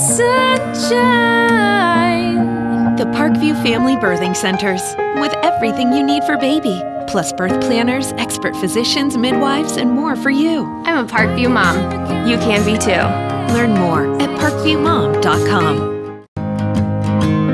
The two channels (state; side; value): identical; both; correlation 1.00